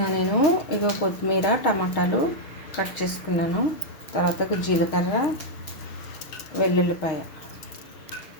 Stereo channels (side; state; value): right; late; 6.4 ms